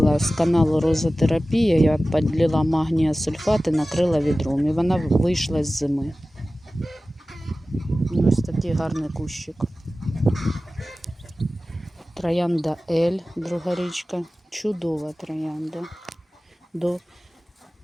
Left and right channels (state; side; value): normal; both; correlation 0.96